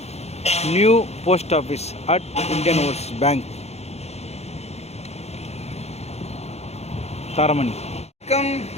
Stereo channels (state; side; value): late; right; 0.31 ms